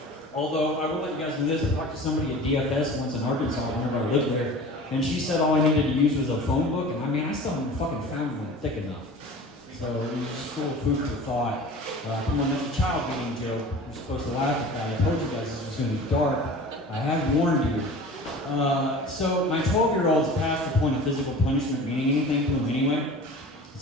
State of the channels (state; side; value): normal; both; correlation 0.39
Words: Although, I will let you guys know this, I talked to somebody at DFS once in Arkansas whenever I lived there, and she said all I needed to use was a phone book, and I still haven't fucking found one thick enough. So, it was just full of food for thought. Come on, that's a child beating joke. You're supposed to laugh at that. I told you guys this was going to be dark. I have warned you. So my 12-year-old's past the point of physical punishment meaning anything to him anyway.